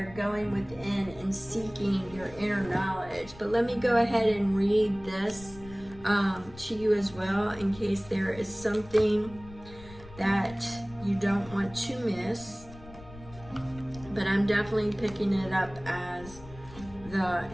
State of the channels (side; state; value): left; noise; rumble, 18 dB below the sound